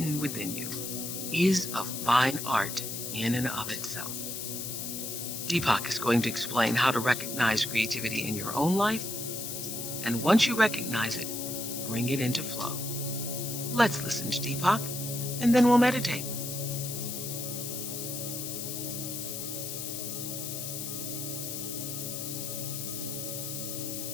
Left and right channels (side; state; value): left; noise; hiss, 5 dB below the sound